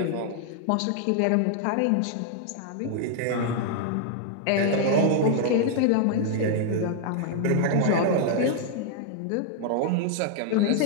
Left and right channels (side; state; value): both; different; correlation 0.00